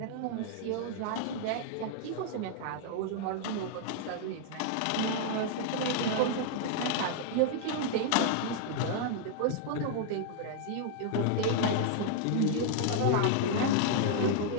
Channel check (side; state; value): both; different; correlation -0.01